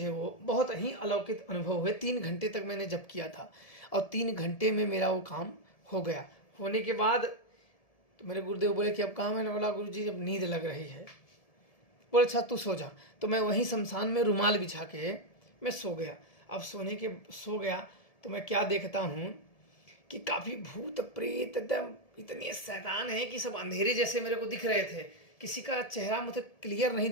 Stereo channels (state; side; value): late; right; 1.7 ms